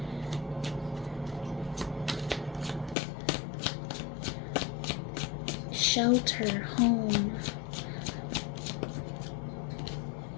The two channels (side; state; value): right; drops out; at 3.0 s